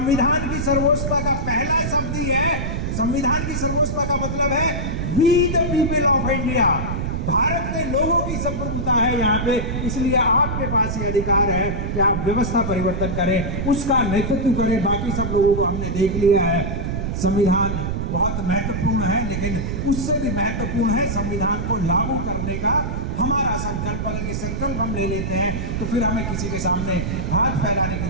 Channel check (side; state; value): right; noise; rumble, 2 dB below the sound